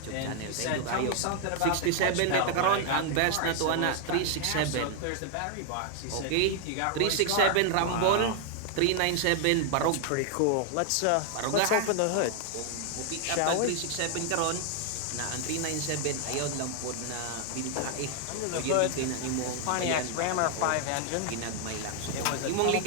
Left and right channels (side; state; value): both; different; correlation 0.00